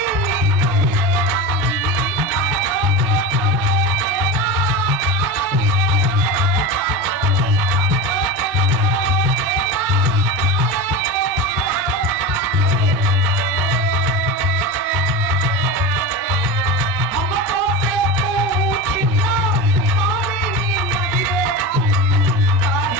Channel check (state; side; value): normal; both; correlation 0.25